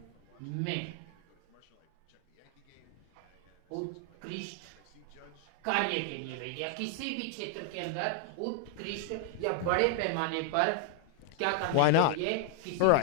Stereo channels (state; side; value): different; both; correlation 0.00